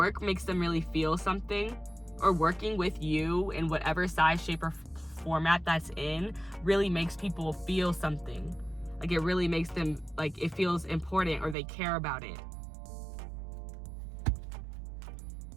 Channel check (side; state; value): left; drops out; at 11.6 s